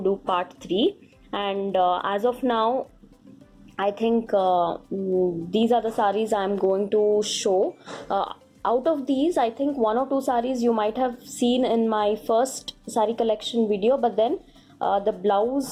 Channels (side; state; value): both; identical; correlation 1.00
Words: do part 3, and as of now I think these are the saris I'm going to show. Out of these, I think one or two saris you might have seen in my first sari collection video, but then the